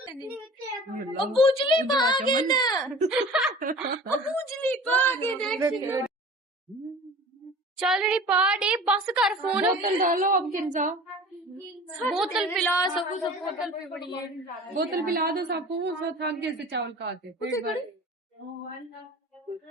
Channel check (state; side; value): normal; both; correlation 0.41